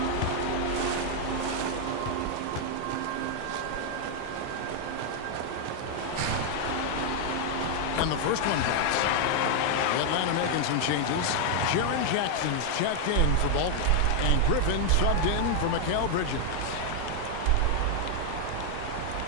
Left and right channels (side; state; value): both; different; correlation 0.00